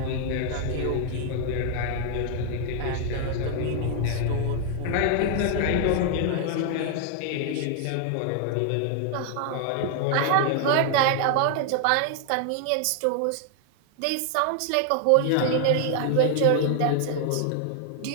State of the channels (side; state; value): both; different; correlation 0.00